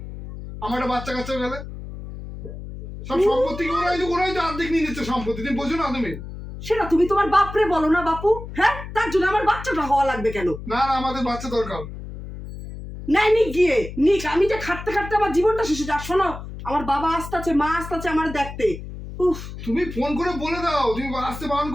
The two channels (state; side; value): noise; left; hum, 11 dB below the sound